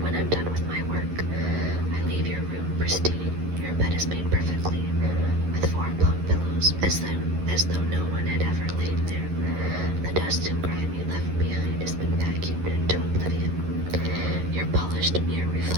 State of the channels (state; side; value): late; left; 11 ms